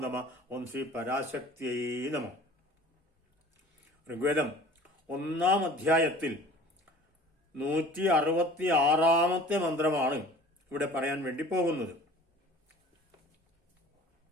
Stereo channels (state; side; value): normal; both; correlation 0.46